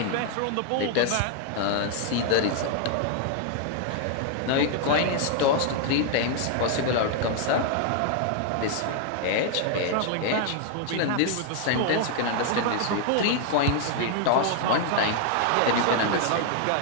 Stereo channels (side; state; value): both; different; correlation 0.00